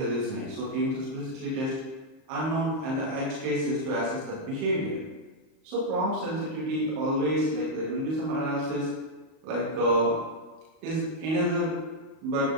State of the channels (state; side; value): late; left; 38 ms